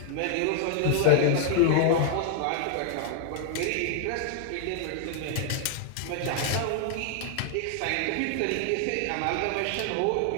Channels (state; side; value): different; both; correlation 0.00